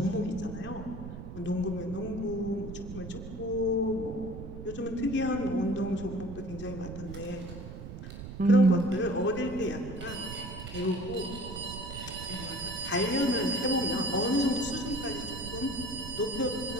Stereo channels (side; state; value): right; noise; rumble, 10 dB below the sound